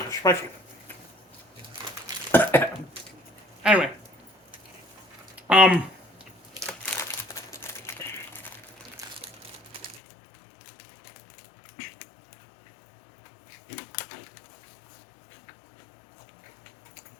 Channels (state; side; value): drops out; right; at 10.0 s